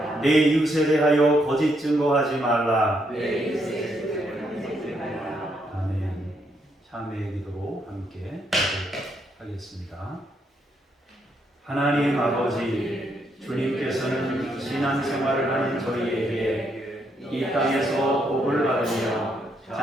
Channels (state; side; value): normal; both; correlation 0.76